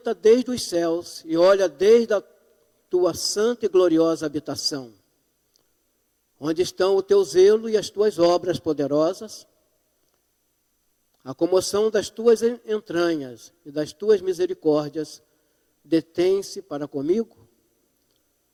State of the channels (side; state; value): both; identical; correlation 1.00